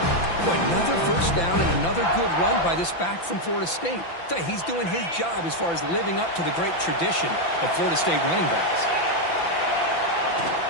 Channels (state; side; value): late; right; 5.9 ms